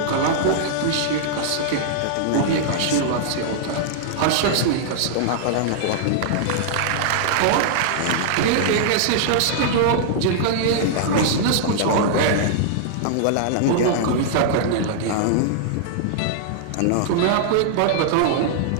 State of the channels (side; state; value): both; different; correlation -0.01